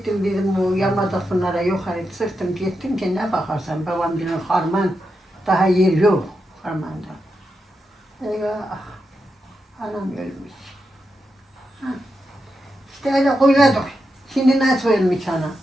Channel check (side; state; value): both; normal; correlation 0.87